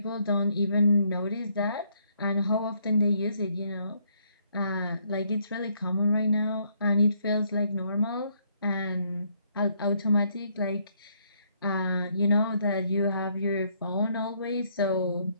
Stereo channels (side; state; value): both; inverted; correlation -0.70